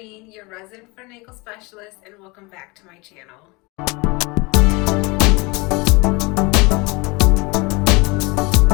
your resident foot and ankle specialist, and welcome back to my channel.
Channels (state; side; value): quieter; right; 26.3 dB